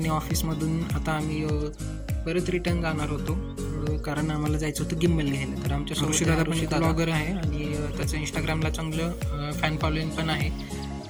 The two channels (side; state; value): both; identical; correlation 1.00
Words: ऑफिसमधून आता आम्ही परत रिटर्न जाणार होतो कारण आम्हाला जायचं होतं गिम्बल घ्यायला. तर आमच्या ऋषी दादा पण ब्लॉगर आहे आणि त्याचं इंस्टाग्रामला चांगलं फॅन फॉलोइंग पण आहे.